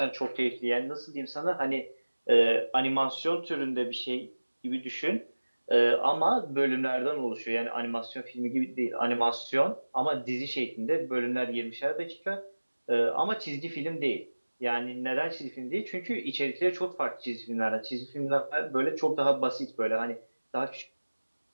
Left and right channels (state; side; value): inverted; both; correlation -1.00